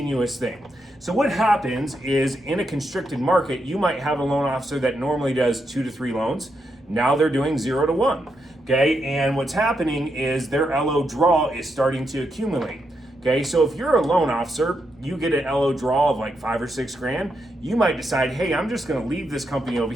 thing. So what happens is in a constricted market, you might have a loan officer that normally does 2 to 3 loans. Now they're doing 0 to 1. Okay, and what's happening is their LO draw is starting to accumulate. Okay, so if you're a loan officer, you get an LO draw of like 5 or 6 grand, you might decide, hey, I'm just gonna leave this company over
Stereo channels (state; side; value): normal; both; correlation 0.82